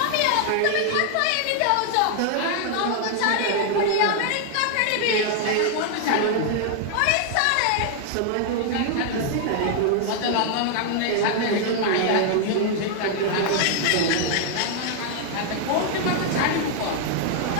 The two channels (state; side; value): different; both; correlation 0.00